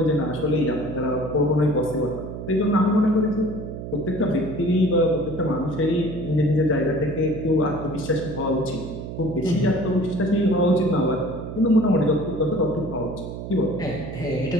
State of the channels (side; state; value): right; noise; hum, 8 dB below the sound